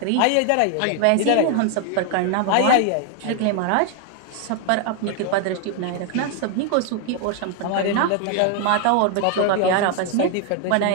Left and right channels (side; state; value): both; different; correlation 0.00